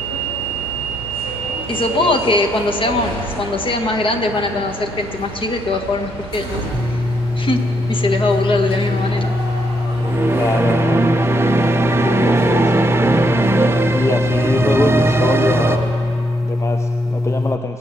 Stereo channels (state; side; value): normal; both; correlation 0.75